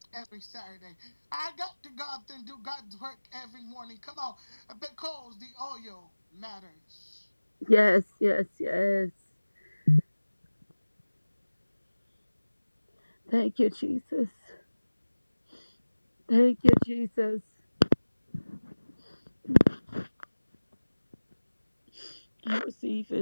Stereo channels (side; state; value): both; inverted; correlation -1.00